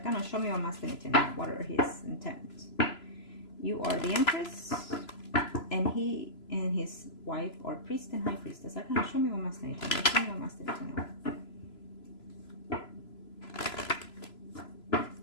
gonna show me what masculinity now. What are his intents? You are the Empress, and he and his wife are priest and high priestess. I'm gonna show me what masculinity. Show me what masculinity now.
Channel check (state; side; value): late; right; 3.0 ms